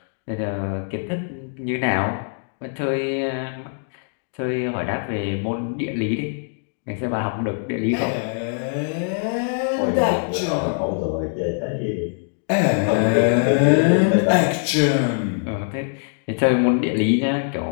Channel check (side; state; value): right; silent; 64 dB below the other